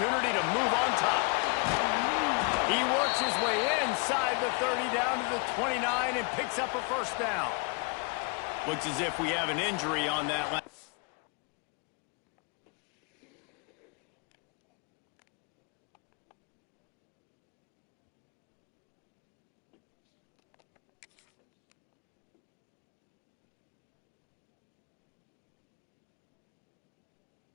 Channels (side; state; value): right; quieter; 32.9 dB